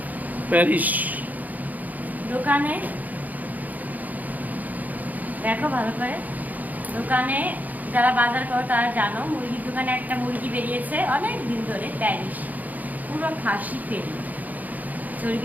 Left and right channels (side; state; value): left; late; 0.080 ms